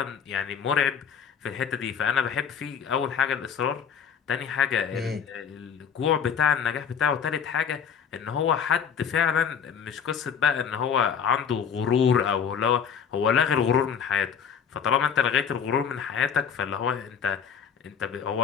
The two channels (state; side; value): quieter; right; 7.3 dB